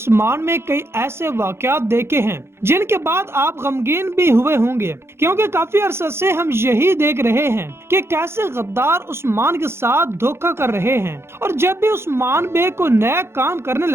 में कई ऐसे वाक़यात देखे हैं जिनके बाद आप गमगीन भी हुए होंगे, क्योंकि काफी अरसे से हम यही देख रहे हैं कि कैसे गद्दार उस्मान के साथ धोखा कर रहे हैं, और जब भी उस्मान बे को नया काम करने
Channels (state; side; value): late; left; 0.12 ms